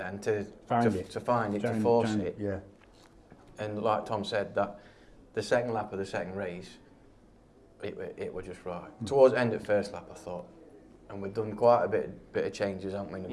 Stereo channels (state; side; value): identical; both; correlation 1.00